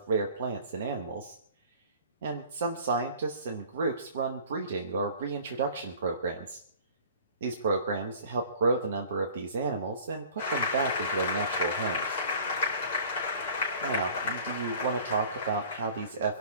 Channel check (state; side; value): inverted; both; correlation -0.47